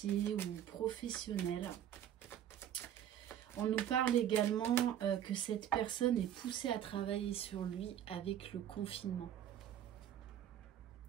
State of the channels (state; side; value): quieter; left; 10.5 dB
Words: ou professionnels. On nous parle également que cette personne est poussée à travailler sur lui avec le confinement.